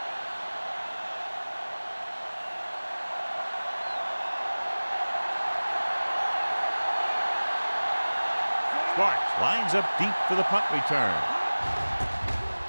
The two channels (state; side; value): inverted; both; correlation -1.00